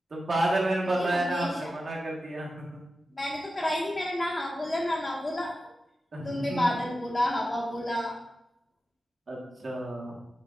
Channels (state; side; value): normal; both; correlation 0.92